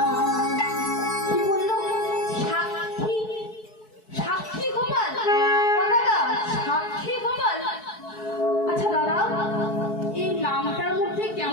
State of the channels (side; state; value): right; late; 4.6 ms